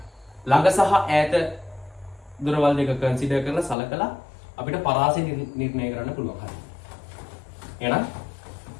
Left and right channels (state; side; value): drops out; right; at 3.8 s